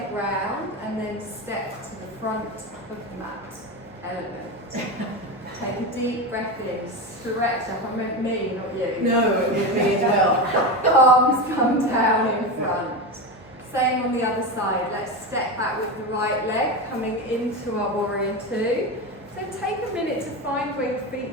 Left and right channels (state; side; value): normal; both; correlation 0.19